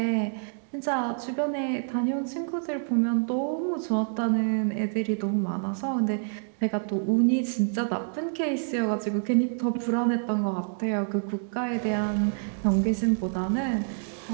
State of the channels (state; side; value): silent; left; digital silence